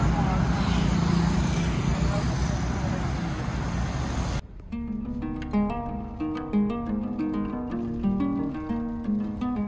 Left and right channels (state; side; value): identical; both; correlation 1.00